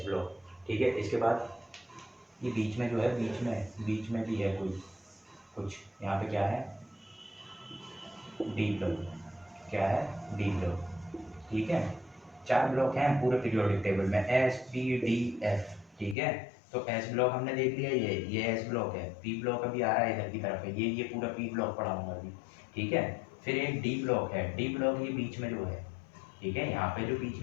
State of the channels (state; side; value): drops out; right; at 16.2 s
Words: ब्लॉक। ठीक है, इसके बाद ये बीच में जो है, बीच में भी है कोई कुछ, यहाँ पे क्या है, डी ब्लॉक। क्या है, डी ब्लॉक। ठीक है, 4 ब्लॉक हैं पूरे पीरियोडिक टेबल में, एस पी डी एफ। ठीक है, तो एस ब्लॉक हमने देख लिया, ये एस ब्लॉक है। पी ब्लॉक अभी आ रहा है इधर की तरफ है, ये पूरा पी ब्लॉक पढ़ाऊंगा अभी। ठीक है, फिर एक डी ब्लॉक है, डी ब्लॉक ये बीच में जो है। ठीक है, यहाँ पे जो बीच